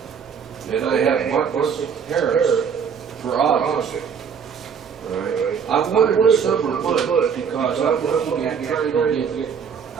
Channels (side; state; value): left; quieter; 6.9 dB